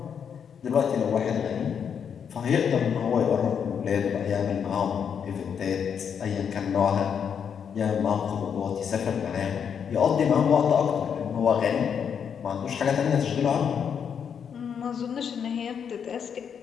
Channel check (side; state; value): right; quieter; 7.4 dB